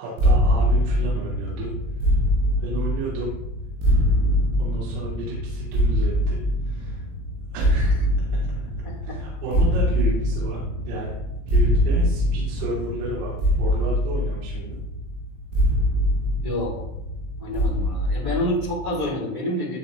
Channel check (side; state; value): left; late; 21 ms